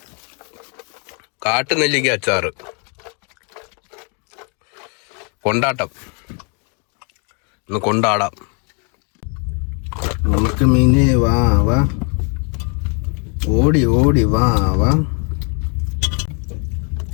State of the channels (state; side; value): quieter; right; 37.3 dB